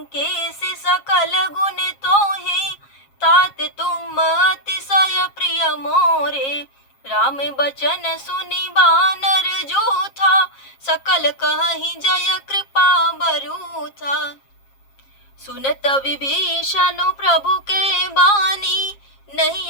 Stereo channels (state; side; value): late; right; 7.4 ms